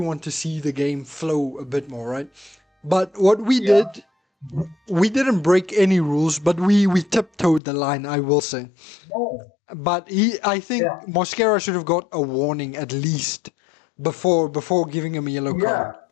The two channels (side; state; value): right; drops out; at 7.6 s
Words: to see the game flow a bit more, right? But what we did, we didn't break any rules, but we tiptoed the line, I will say. No. But I think Mosquera should have got a warning at least before giving him a yellow card.